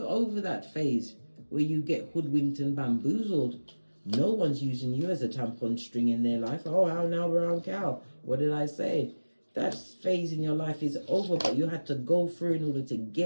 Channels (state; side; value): inverted; both; correlation -1.00